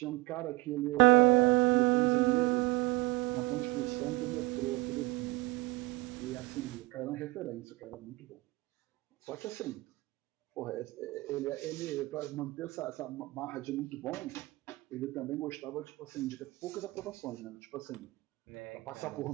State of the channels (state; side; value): quieter; left; 21.9 dB